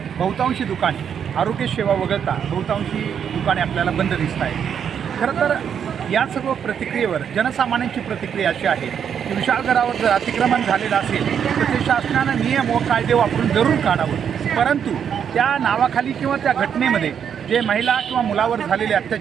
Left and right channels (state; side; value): quieter; left; 8.0 dB